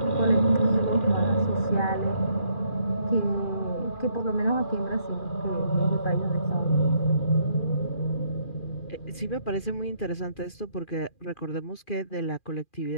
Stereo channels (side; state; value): right; late; 2.4 ms